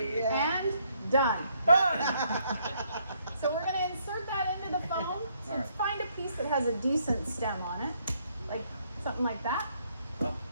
Yeah. and done. Done! So we're going to insert that into the foam. So All right. find a piece that has a decent stem on it, like something like that. Oh,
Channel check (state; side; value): inverted; both; correlation -0.70